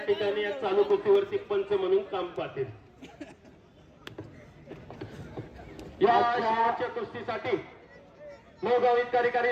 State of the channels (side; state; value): both; identical; correlation 1.00